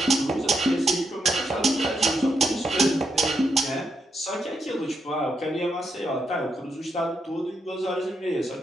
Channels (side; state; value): both; normal; correlation 0.80